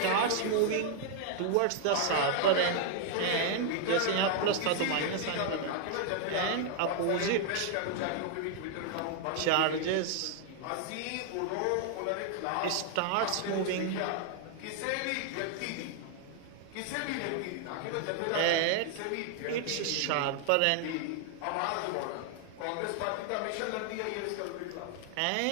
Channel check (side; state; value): both; different; correlation 0.00